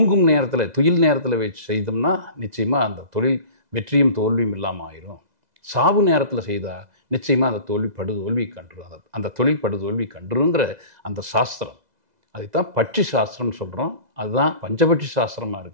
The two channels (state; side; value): late; left; 2.0 ms